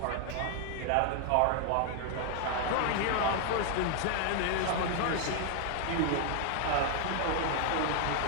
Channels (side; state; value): both; different; correlation 0.00